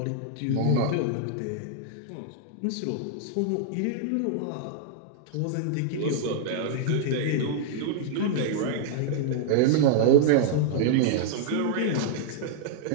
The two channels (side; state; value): both; different; correlation -0.01